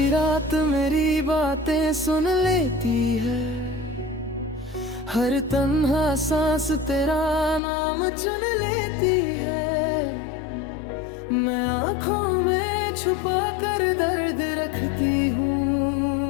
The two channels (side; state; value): right; drops out; at 7.6 s